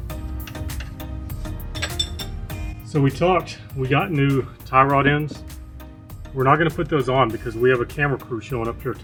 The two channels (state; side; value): identical; both; correlation 1.00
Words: So we talked, we got new tie rod ends. We're not going to put those on because we have a camera crew showing up here